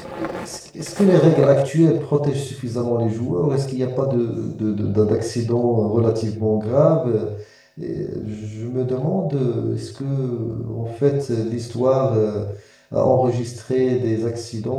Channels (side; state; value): both; identical; correlation 1.00